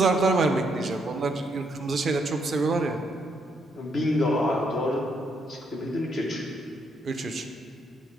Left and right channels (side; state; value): both; normal; correlation 0.74